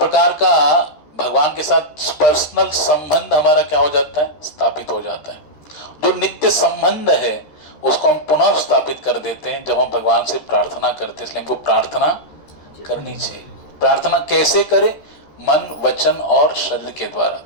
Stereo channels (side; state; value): right; late; 13 ms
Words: का भगवान के साथ पर्सनल संबंध हमारा क्या हो जाता है? स्थापित हो जाता है। जो नित्य संबंध है उसको हम पुनः स्थापित कर देते हैं जब हम भगवान से प्रार्थना करते हैं। इसलिए हमको प्रार्थना करनी चाहिए। प्रार्थना कैसे करें? मन, वचन और शरीर के द्वारा,